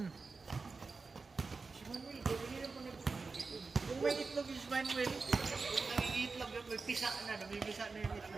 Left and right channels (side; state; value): left; quieter; 4.3 dB